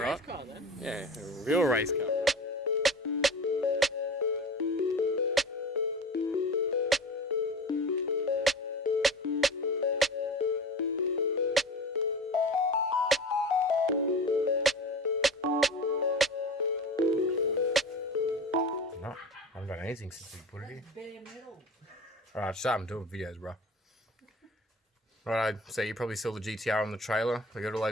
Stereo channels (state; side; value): normal; both; correlation 0.36